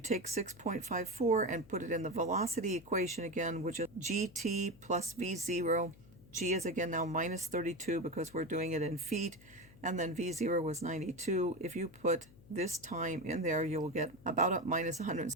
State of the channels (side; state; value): left; noise; hum, 23 dB below the sound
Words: 6.54 and put it in the velocity equation again, which is gt plus v0. G is again now minus 32 because we're doing it in feet, and then v0 was 92. If you put this time in there, you will get about a minus